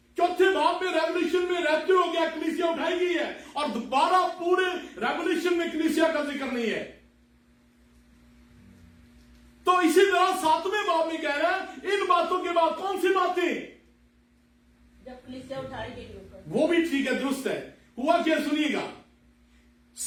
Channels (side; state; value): both; identical; correlation 1.00